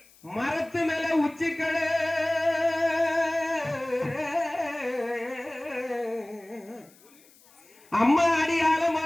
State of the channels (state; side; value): noise; left; hiss, 28 dB below the sound